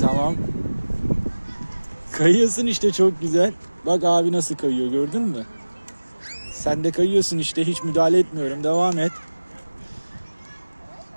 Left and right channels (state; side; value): inverted; both; correlation -1.00